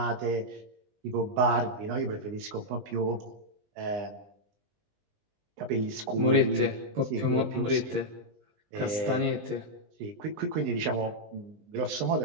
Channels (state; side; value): late; left; 20 ms